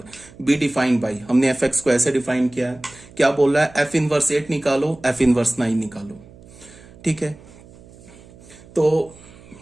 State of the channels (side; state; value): right; noise; hum, 22 dB below the sound